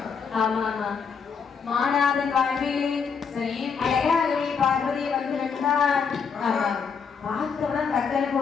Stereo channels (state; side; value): quieter; right; 6.1 dB